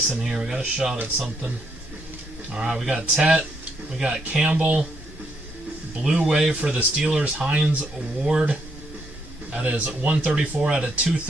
in here. We got a shot at something. Alright, we got Tet. We got Campbell. Blue wave for the Steelers, Hines Ward. That is 134 out of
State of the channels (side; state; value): both; normal; correlation 0.75